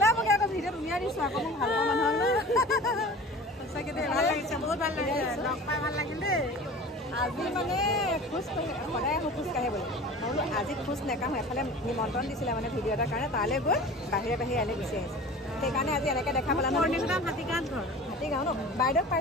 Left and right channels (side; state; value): both; normal; correlation 0.39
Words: আকৌ ভিডিঅ'ত উলিয়াই দিছোঁ আকৌ মই ভাল পাওঁ মানুহক সঁচাকৈ দেই ভাল লাগিছে বহুত ভাল লাগিছে লগ পাই ভাল লাগিল দেই আজি মানে খোজ সদায় আহোঁ খোজ কাঢ়ে বুলি মই বোলো আজি খোজ নেকাঢ়োঁ এফালে নিমন্ত্ৰণ দিছিলে মানে ভিডিঅ' এটাৰ কাৰণে তালৈ গৈ বাহিৰে ইয়ালৈ গুচি আহিছে সেইকাৰণে আজি এনেকৈ দেখা পেলা হাতীগাঁও ন বাইদেউক